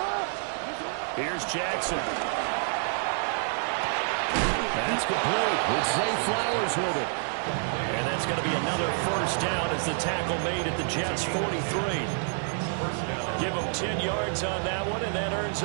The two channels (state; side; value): silent; left; 59 dB below the other